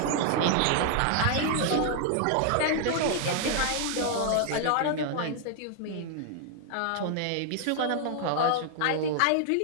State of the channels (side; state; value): both; different; correlation 0.00